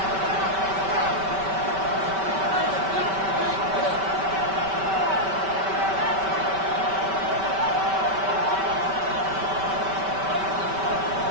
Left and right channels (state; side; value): late; left; 5.2 ms